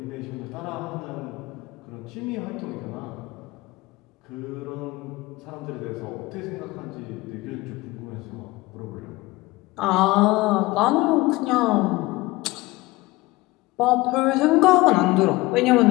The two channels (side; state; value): right; quieter; 20.6 dB